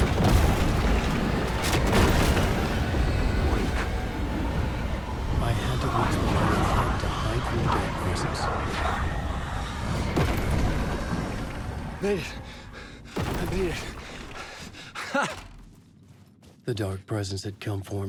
Made it. I made it. The dark presence had come for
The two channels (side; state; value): both; identical; correlation 1.00